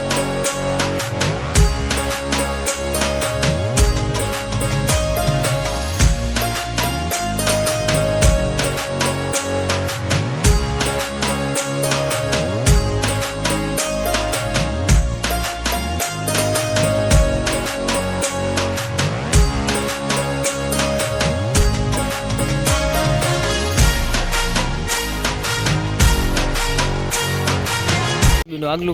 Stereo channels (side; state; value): both; identical; correlation 1.00